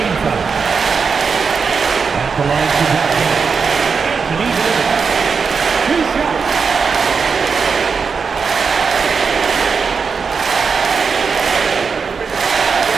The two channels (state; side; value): quieter; left; 5.5 dB